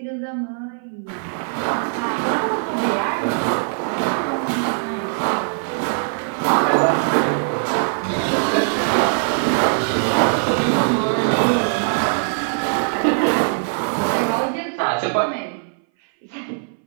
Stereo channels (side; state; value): left; silent; 60 dB below the other